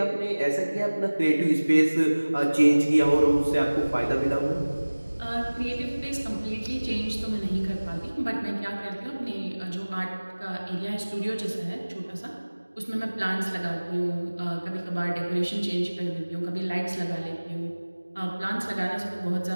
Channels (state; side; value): inverted; both; correlation -1.00